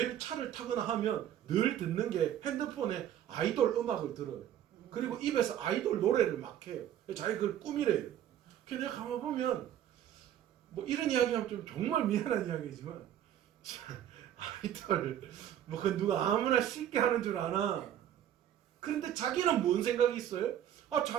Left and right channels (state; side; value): quieter; left; 10.9 dB